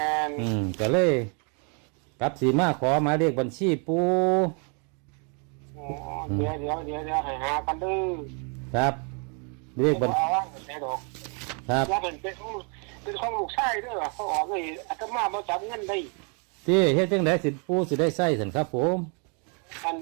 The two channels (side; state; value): left; quieter; 36.9 dB